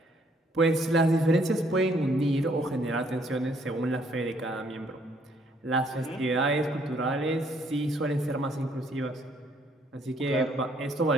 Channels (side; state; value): both; normal; correlation 0.66